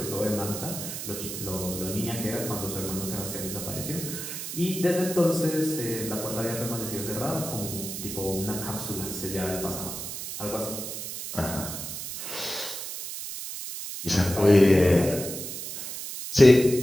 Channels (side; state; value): right; noise; hiss, 7 dB below the sound